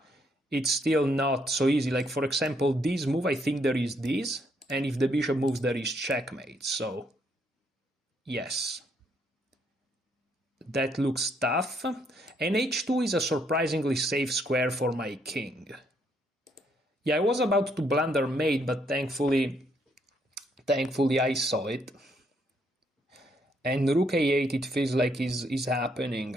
it's still not so easy. Like, for example, this move, I think there is this, and if the bishop moves, there is checkmate. So, yes. That looks tough. And h2 is a surprisingly safe square for my king. Yeah, I was about to blunder mate, but thankfully I saw it. And rook a8, it feels like is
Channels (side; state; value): both; normal; correlation 0.72